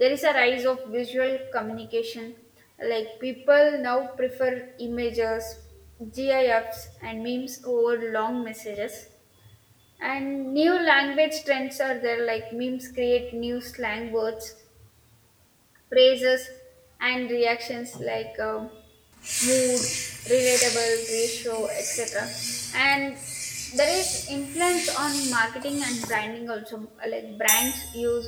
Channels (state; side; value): identical; both; correlation 1.00